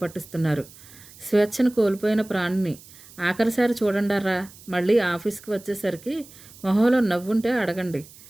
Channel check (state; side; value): noise; right; hiss, 21 dB below the sound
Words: పట్టిస్తున్నారు. స్వేచ్ఛను కోల్పోయిన ప్రాణిని ఆఖరిసారి చూడండారా, మళ్ళీ ఆఫీస్కి వచ్చేసరికి మొహంలో నవ్వుంటే అడగండి